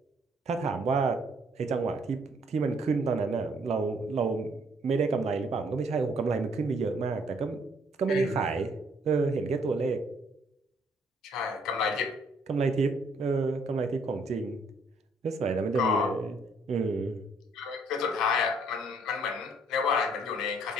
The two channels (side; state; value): both; normal; correlation 0.65